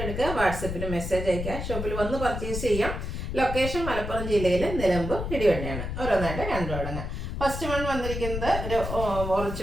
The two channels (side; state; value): left; noise; rumble, 5 dB below the sound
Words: എടുക്കുക, വാട്സപ്പിൽ മെസ്സേജ് അയക്കുക. ഷോപ്പിൽ വന്ന് പർച്ചേസ് ചെയ്യാം. ലൊക്കേഷൻ മലപ്പുറം ജില്ലയിലെ നിലമ്പൂർ ഇടിവണ്ടിയാണ്. ഓരോന്നായിട്ട് കണ്ടു തുടങ്ങാം. ഫസ്റ്റ് വൺ വന്നിരിക്കുന്നത് ഒരു